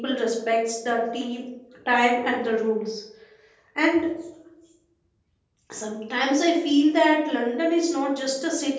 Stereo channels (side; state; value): both; identical; correlation 1.00